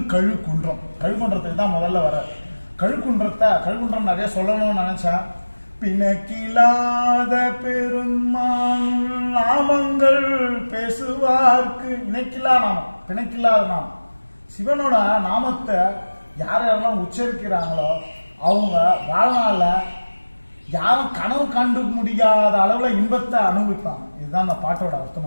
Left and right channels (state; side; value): inverted; both; correlation -1.00